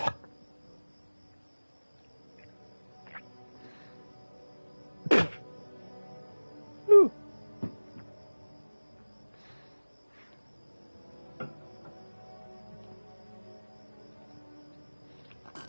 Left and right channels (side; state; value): both; inverted; correlation -1.00